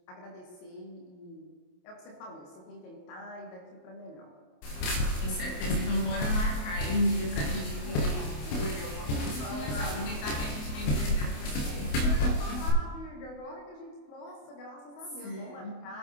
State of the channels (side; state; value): right; late; 28 ms